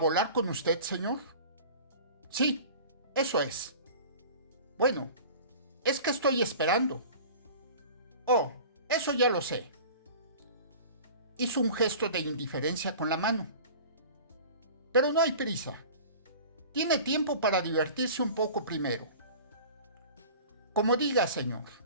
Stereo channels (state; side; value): inverted; both; correlation -0.41